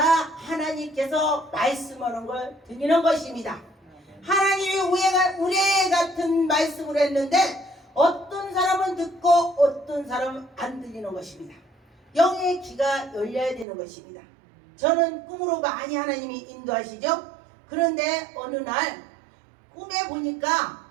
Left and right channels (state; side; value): drops out; left; at 13.7 s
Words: 말씀하는 걸 들리는 것입니다. 하나님이 우레 같은 말씀을 했는데 어떤 사람은 듣고 어떤 사람은 안 들리는 것입니다. 영의 귀가 열려야 되는 것입니다. 저는 꿈으로 많이 하나님이 인도하시죠. 그런데 어느 날 꿈에 보니까